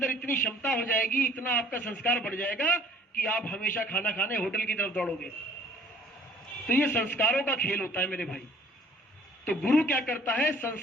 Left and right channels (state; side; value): normal; both; correlation 0.55